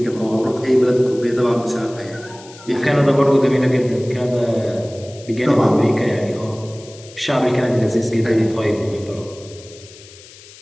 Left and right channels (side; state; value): left; noise; hiss, 21 dB below the sound